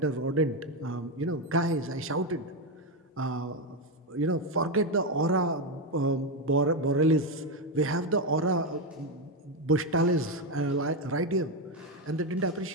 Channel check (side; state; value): both; normal; correlation 0.09